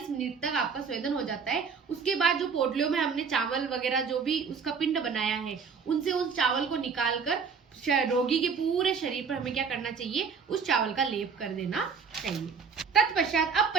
मिनट तक आपका स्वेदन हो जाता है, उसके बाद जो पोटलियों में हमने चावल वगैरह जो भी उसका पिंड बनाया है, उनसे उस चावल को निकालकर रोगी के पूरे शरीर पर हमें क्या करना चाहिए, उस चावल का लेप कर देना चाहिए। तत्पश्चात, अब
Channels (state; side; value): quieter; left; 5.8 dB